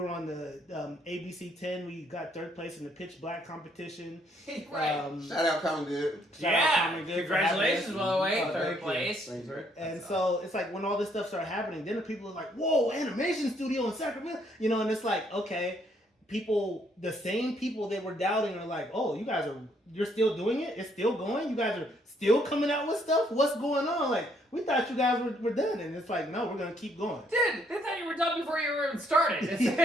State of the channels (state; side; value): normal; both; correlation 0.69